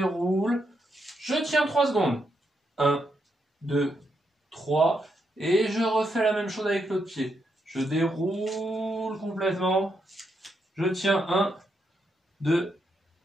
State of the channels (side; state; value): both; normal; correlation 0.80